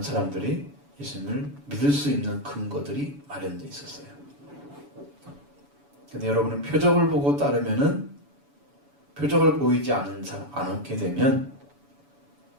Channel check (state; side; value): late; left; 7.0 ms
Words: 사람들이 예수님을 믿을 수 있는 근거들이 마련되어 있었어요. 근데 여러분은 표적을 보고 따르면은, 표적을 보이지 않게 되면